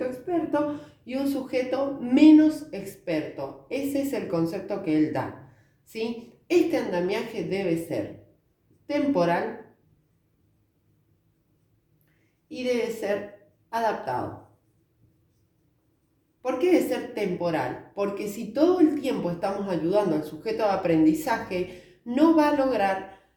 experto y un sujeto menos experto. Ese es el concepto que él da, ¿sí? Este andamiaje debe ser temporal y debe ser adaptado. ¿Por qué debe ser temporal? Porque si todo el tiempo estamos ayudando al sujeto de aprendizaje, no va a lograr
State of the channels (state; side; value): identical; both; correlation 1.00